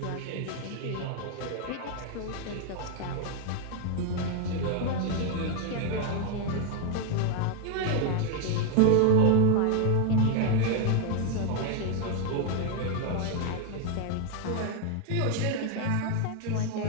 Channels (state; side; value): different; both; correlation 0.00